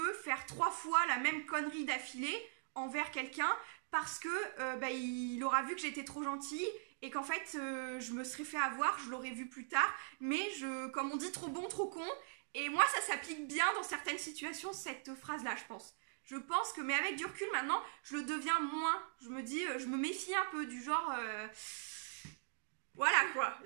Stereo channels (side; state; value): left; silent; digital silence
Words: faire 3 fois la même connerie d'affilée envers quelqu'un parce que ben, il aura vu que j'étais trop gentille et qu'en fait je me serais fait avoir, je l'aurais vu plus tard. Mais comme on dit, trop bon, trop con. Et moi, ça s'applique bien dans certaines situations, cette phrase-là, je pense. Je pense que, mais avec du recul maintenant, je le deviens moins. Je me dis, je me méfie un peu du genre... voilà quoi,